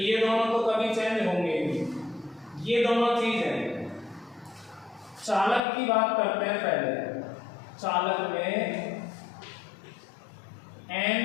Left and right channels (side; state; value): right; drops out; at 5.6 s